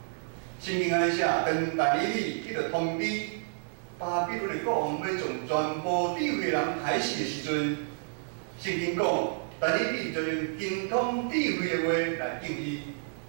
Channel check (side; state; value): left; silent; digital silence